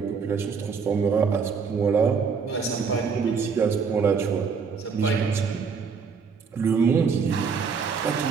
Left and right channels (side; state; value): left; quieter; 5.7 dB